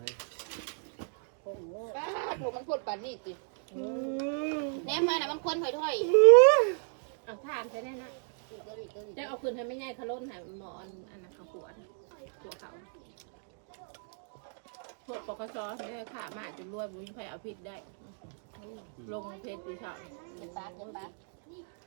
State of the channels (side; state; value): left; silent; 56 dB below the other